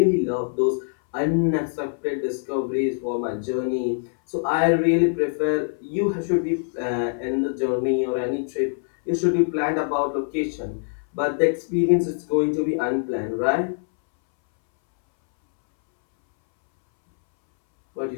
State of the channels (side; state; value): right; silent; 63 dB below the other